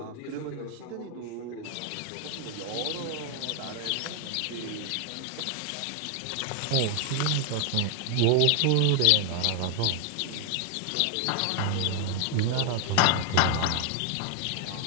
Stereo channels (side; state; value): both; different; correlation 0.00